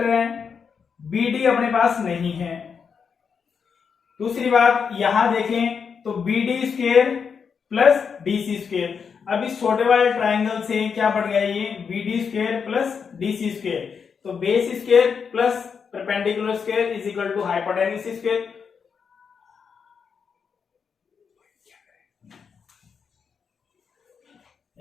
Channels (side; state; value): right; quieter; 6.3 dB